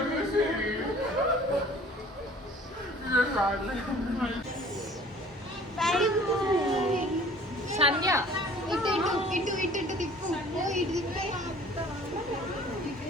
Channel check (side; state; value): both; normal; correlation 0.50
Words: సంధ్య ఇటు ఇటు ఇటు ఇటు తిప్పు. ఇటు తిప్పే.